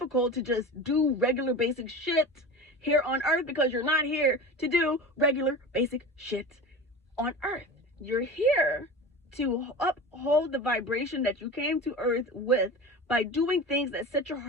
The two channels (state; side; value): normal; both; correlation 0.31